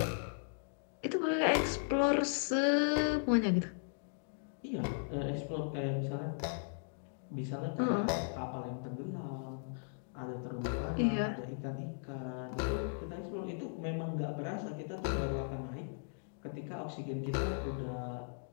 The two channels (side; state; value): right; silent; digital silence